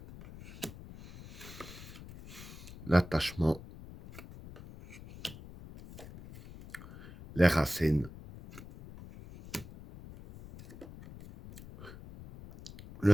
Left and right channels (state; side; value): noise; left; rumble, 15 dB below the sound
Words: l'attachement, les racines, le